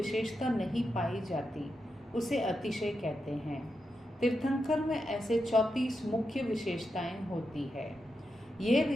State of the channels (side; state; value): both; normal; correlation 0.87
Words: नहीं पाई जाती उसे अतिशय कहते हैं। तीर्थंकर में ऐसे 34 मुख्य विशेषताएं होती है। ये